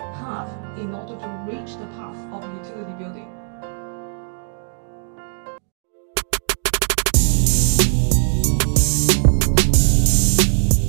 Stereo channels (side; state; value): left; silent; 59 dB below the other